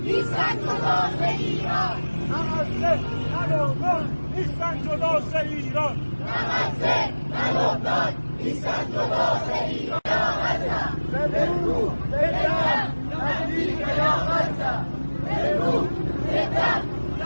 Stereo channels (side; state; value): both; inverted; correlation -1.00